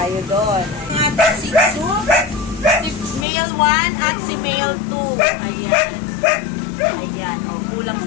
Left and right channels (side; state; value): right; drops out; at 3.2 s